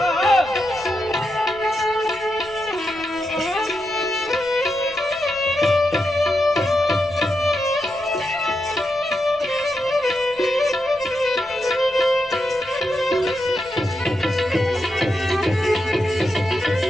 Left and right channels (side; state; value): left; noise; rumble, 24 dB below the sound